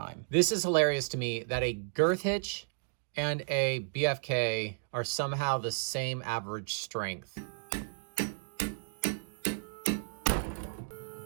This is hilarious to me that a girth hitch and a BFK are somehow the same average strength.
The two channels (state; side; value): silent; left; digital silence